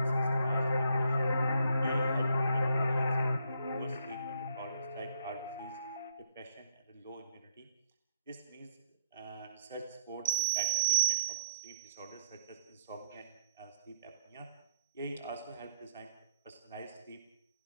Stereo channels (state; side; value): inverted; both; correlation -0.68